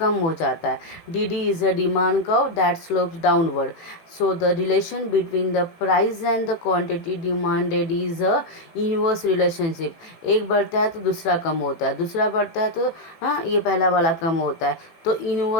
हो जाता है। D D is a demand curve that slopes downward, so the relation between the price and the quantity demanded is a inverse relationship. एक बढ़ता है तो दूसरा कम होता है, दूसरा बढ़ता है तो ये पहला वाला कम होता है, तो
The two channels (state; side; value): late; right; 18 ms